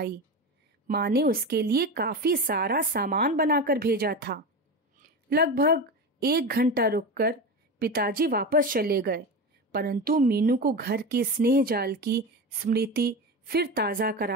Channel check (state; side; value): normal; both; correlation 0.23